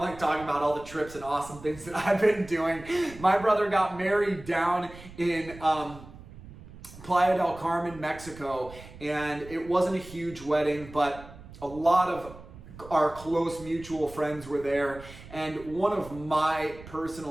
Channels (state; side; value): noise; right; rumble, 17 dB below the sound